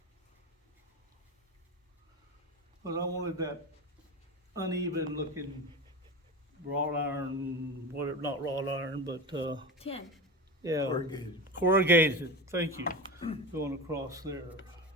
But I wanted that uneven looking wrought iron, whatever, not wrought iron, but, Tin. yeah. Corrugated, thank you, going across there.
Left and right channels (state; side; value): normal; both; correlation 0.25